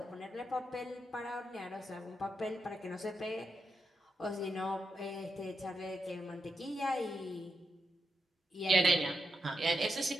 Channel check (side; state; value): both; normal; correlation 0.85